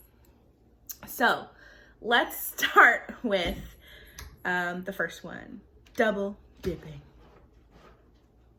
So let's start with the first one, double dipping.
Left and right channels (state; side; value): identical; both; correlation 1.00